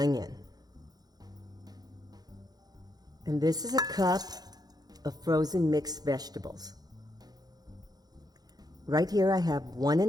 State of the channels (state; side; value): late; left; 0.19 ms